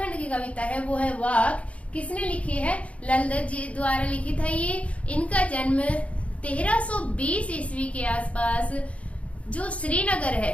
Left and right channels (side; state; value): right; late; 0.064 ms